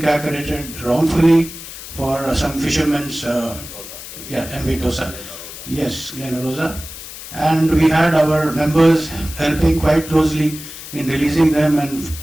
wrongfully for some fishermen's, MV Dosa. Yes, Glen Rosa. And we had our members helping quite closely in releasing them, and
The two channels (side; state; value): left; noise; hiss, 12 dB below the sound